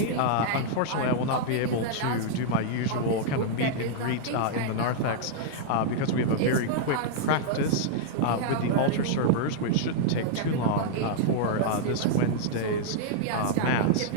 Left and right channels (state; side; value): different; both; correlation -0.01